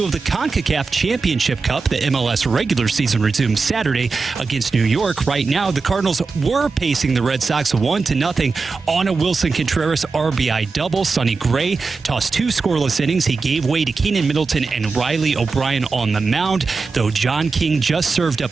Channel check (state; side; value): quieter; left; 4.4 dB